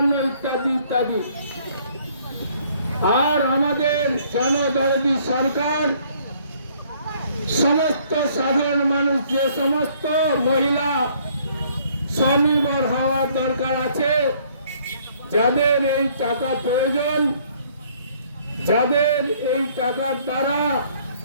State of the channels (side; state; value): both; inverted; correlation -0.61